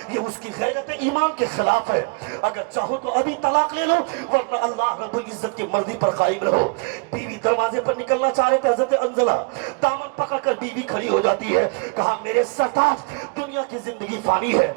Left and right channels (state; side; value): quieter; left; 30.7 dB